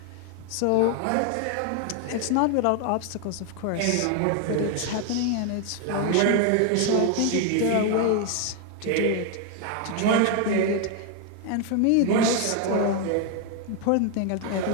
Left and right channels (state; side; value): different; both; correlation 0.01